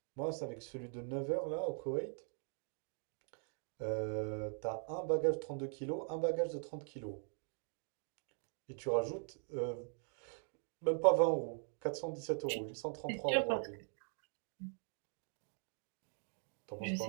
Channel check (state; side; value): silent; left; 50 dB below the other